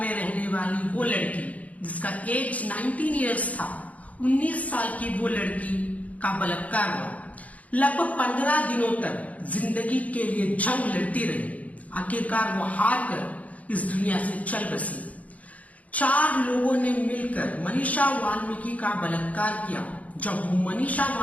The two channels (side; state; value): right; late; 0.070 ms